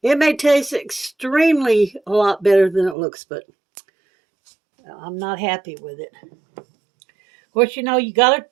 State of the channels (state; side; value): drops out; left; at 3.0 s